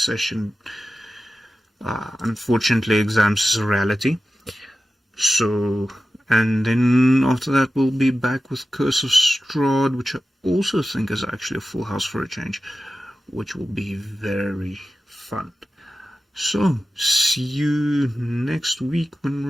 session. Unfortunately, exams is a reality. So, and then after that we'll be back with Curse of Strahd, which I also think is actually a full house for a change, which will be very fun. So, see you next week when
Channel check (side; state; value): both; normal; correlation 0.93